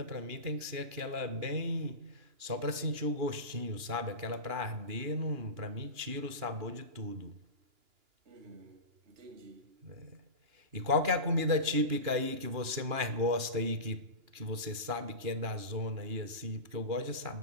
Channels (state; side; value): late; left; 2.9 ms